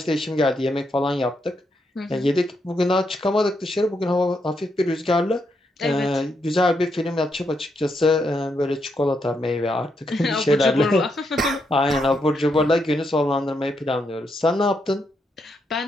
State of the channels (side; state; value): both; normal; correlation 0.80